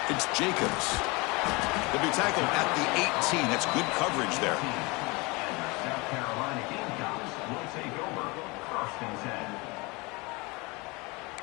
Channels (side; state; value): right; quieter; 26.1 dB